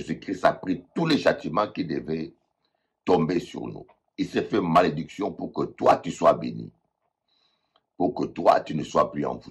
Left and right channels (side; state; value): both; identical; correlation 1.00